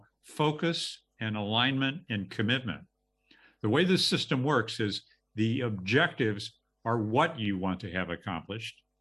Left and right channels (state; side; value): identical; both; correlation 1.00